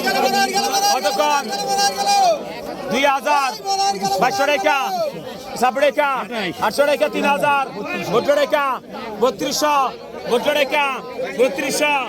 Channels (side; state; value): both; identical; correlation 1.00